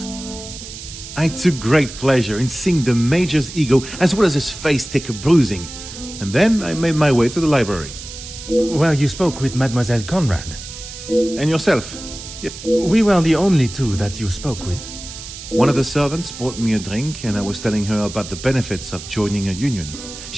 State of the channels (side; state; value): right; noise; hiss, 12 dB below the sound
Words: I took great pleasure in seeing the Major's ego as well as his face take a bruising. And then I made my way to the library. Well, you spoke with Mademoiselle Conrad. And yourself? We were the only two that you spoke with. One of the servants bought me a drink and I was telling her about the benefits of joining a union.